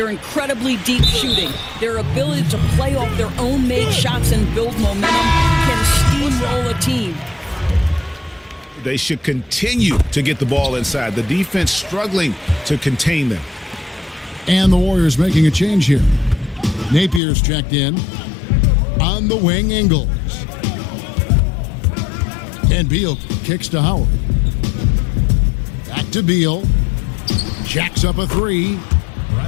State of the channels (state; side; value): drops out; right; at 17.2 s